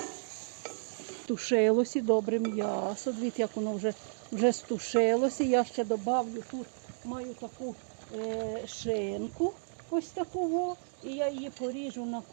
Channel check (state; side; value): silent; left; digital silence